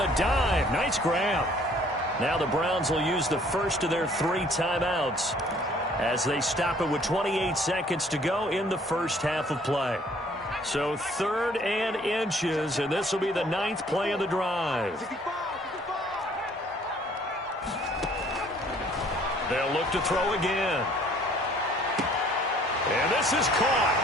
dive. Nice grab. Now the Browns will use the first of their 3 timeouts as they stop it with 28 seconds to go in the first half of play. So 3rd and inches, and this will be the 9th play of the drive. They'll look to throw again. And this is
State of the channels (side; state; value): both; normal; correlation 0.58